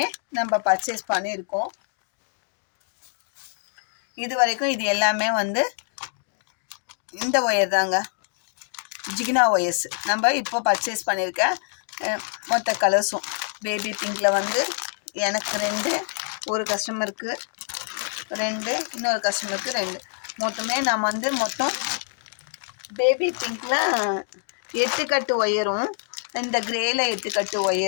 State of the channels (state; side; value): silent; right; 57 dB below the other